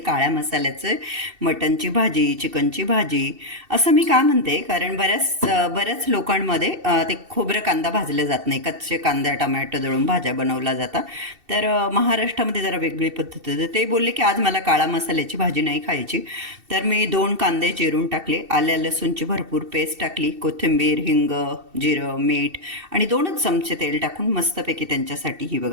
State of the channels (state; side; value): late; left; 2.7 ms